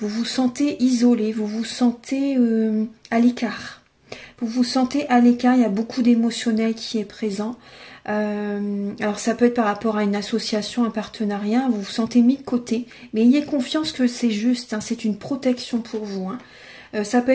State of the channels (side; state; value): both; identical; correlation 1.00